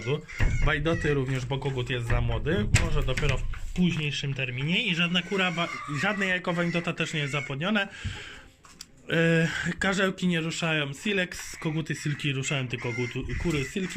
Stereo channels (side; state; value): both; identical; correlation 1.00